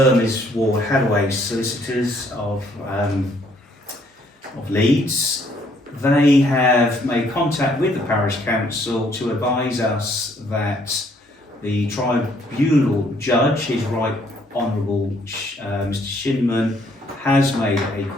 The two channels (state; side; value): normal; both; correlation 0.66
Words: is Ward Hadaway Solicitors of Leeds. They have made contact with the Parish Council to advise us that the tribunal judge, His Right Honourable Mr. Shinman, has made a